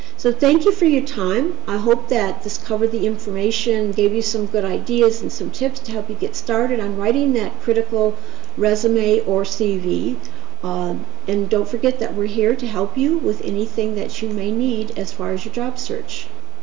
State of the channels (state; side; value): quieter; left; 16.1 dB